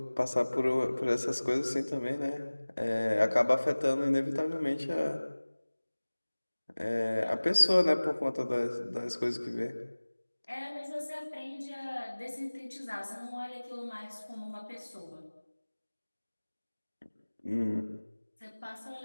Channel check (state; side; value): inverted; both; correlation -1.00